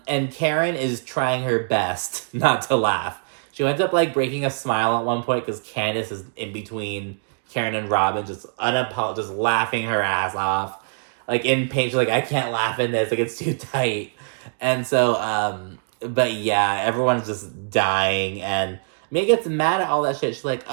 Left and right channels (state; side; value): silent; left; digital silence